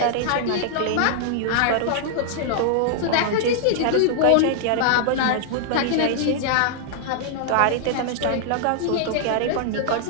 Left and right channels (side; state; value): both; different; correlation -0.01